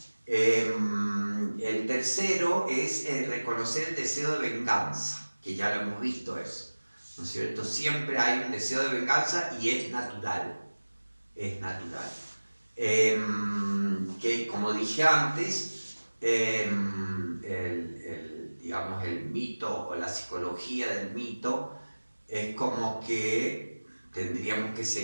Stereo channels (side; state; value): both; inverted; correlation -1.00